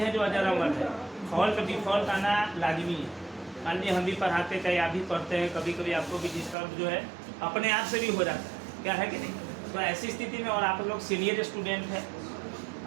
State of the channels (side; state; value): left; drops out; at 6.6 s